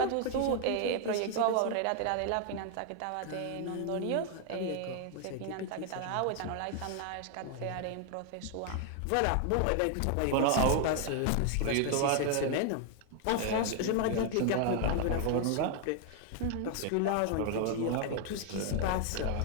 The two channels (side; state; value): both; different; correlation 0.00